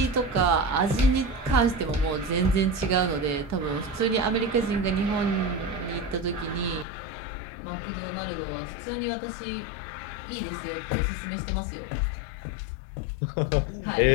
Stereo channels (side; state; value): right; drops out; at 6.9 s